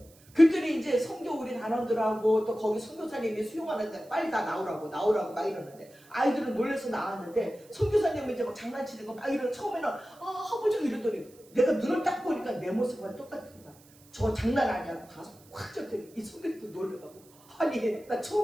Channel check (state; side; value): noise; right; hiss, 26 dB below the sound